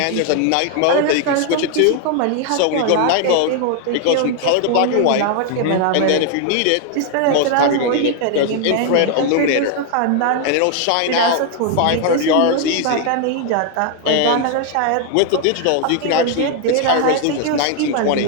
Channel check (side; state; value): both; different; correlation 0.00